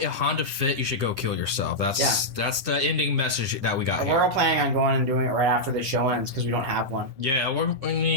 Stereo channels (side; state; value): left; late; 9.9 ms